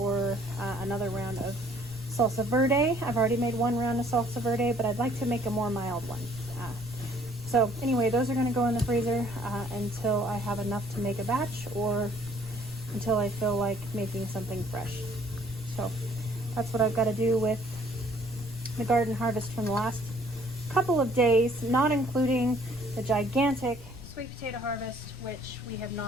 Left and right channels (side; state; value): left; noise; rumble, 15 dB below the sound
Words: another round of salsa verde. I've already made one round of salsa verde, but I'd like to make a more mild one. So anyway, those are going to go in the freezer until I have enough to make a batch, or until I feel like making something fresh. So that's what I've got to do with the garden harvest from the last couple of days, not including the gigantic sweet potato harvest, which we have